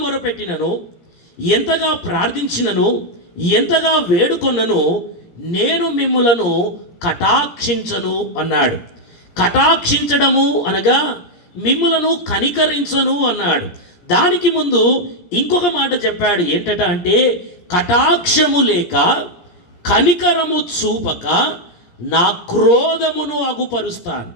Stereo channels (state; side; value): late; right; 17 ms